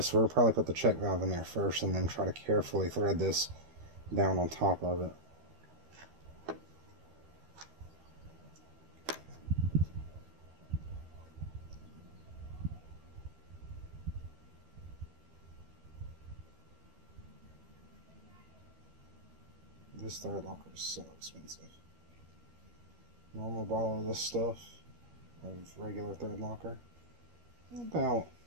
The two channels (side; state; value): left; late; 13 ms